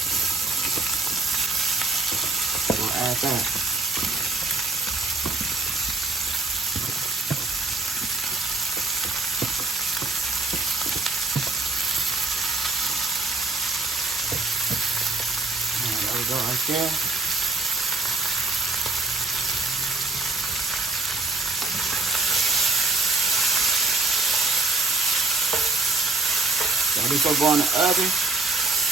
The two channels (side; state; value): left; quieter; 3.5 dB